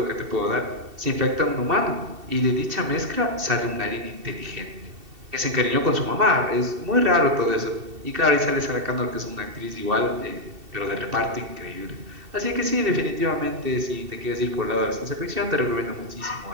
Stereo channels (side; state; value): left; late; 2.7 ms